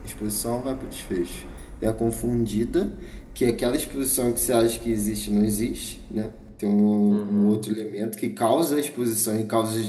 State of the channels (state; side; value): identical; both; correlation 1.00